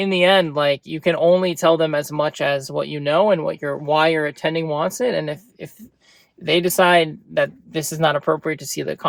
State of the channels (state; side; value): identical; both; correlation 1.00